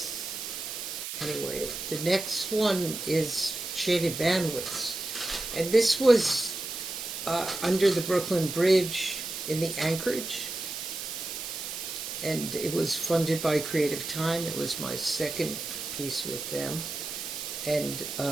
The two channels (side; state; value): right; noise; hiss, 6 dB below the sound